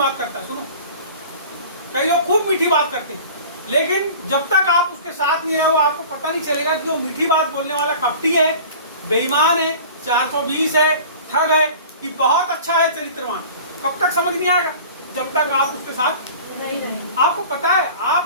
करता है। सुनो, कई लोग खूब मीठी बात करते हैं, लेकिन जब तक आप उसके साथ नहीं रहो आपको पता नहीं चलेगा कि वो मीठी बात बोलने वाला कपटी है, बेईमान है, 420 है, ठग है, कि बहुत अच्छा है, चरित्रवान। कब तक समझ नहीं आएगा? जब तक आप उसके साथ नहीं। आपको पता है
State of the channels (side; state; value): both; inverted; correlation -0.42